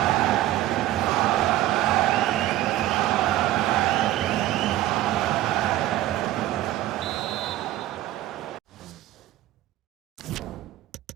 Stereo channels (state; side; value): quieter; left; 14.8 dB